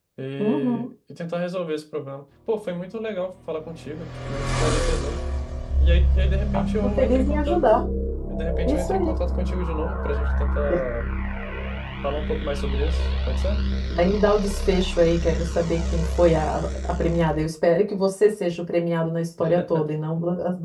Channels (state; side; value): identical; both; correlation 1.00